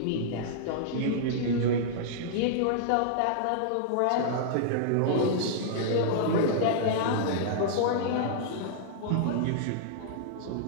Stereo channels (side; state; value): both; different; correlation -0.02